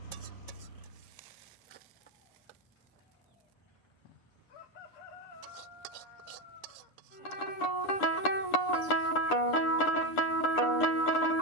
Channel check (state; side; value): late; right; 9.8 ms